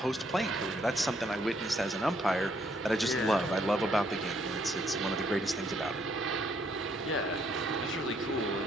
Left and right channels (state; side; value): normal; both; correlation 0.70